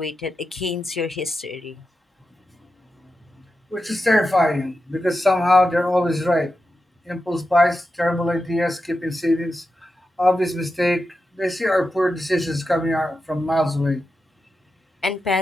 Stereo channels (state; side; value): normal; both; correlation 0.89